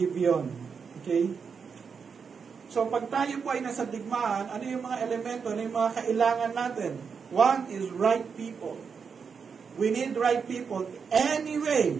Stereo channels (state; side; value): quieter; left; 6.0 dB